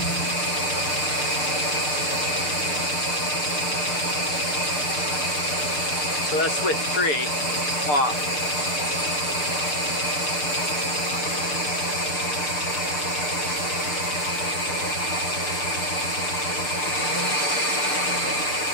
So that's with 3 off.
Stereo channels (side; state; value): right; late; 6.7 ms